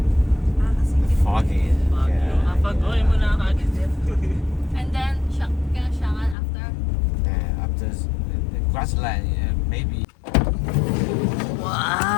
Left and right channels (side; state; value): right; drops out; at 6.4 s